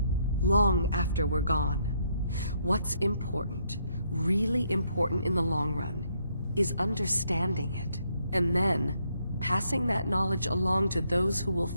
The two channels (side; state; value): both; inverted; correlation -0.73